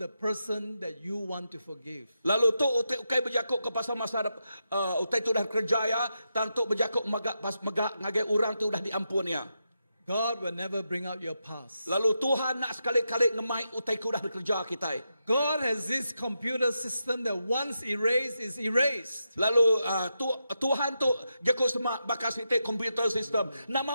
person that you want to forgive. Lalu tu ukai berjakuk ke pasal masa utai tu dah kerja ya. Tang tu berjakuk magak pas magak ngagai orang tu dah diampun ya. God will never bring out your past. Lalu Tuhan nak sekali-kali ngemai utai ku dah bekerja kita. God has this computer system that once erased is erased. Lalu Tuhan tu jakuk semak bakas itu computer system.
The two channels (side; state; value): both; inverted; correlation -0.86